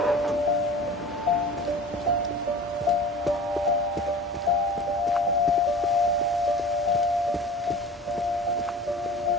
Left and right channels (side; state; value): both; normal; correlation 0.39